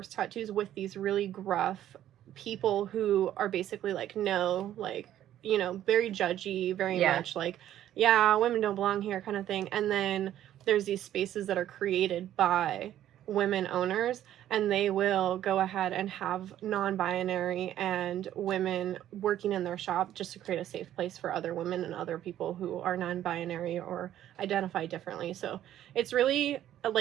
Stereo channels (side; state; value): left; quieter; 11.9 dB